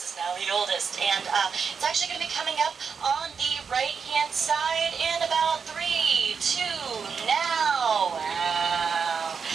is now the oldest, and it's actually going to be coming up on the right-hand side in about 3, 2, now. Wow.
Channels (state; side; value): quieter; left; 6.0 dB